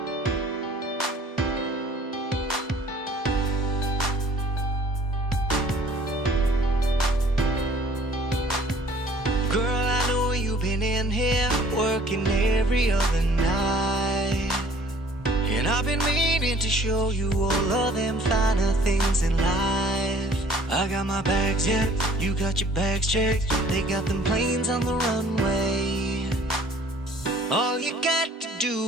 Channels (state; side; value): normal; both; correlation 0.54